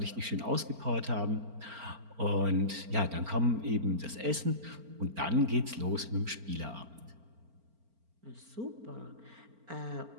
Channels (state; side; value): late; left; 4.4 ms